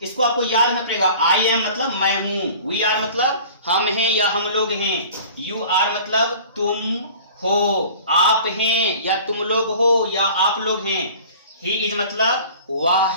इसको आपको याद रखना पड़ेगा। आई एम मतलब मैं हूं, वी आर मतलब हम हैं या हम लोग हैं, यू आर मतलब तुम हो, आप हैं या तुम लोग हो या आप लोग हैं, ही इज मतलब वह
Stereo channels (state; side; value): inverted; both; correlation -0.44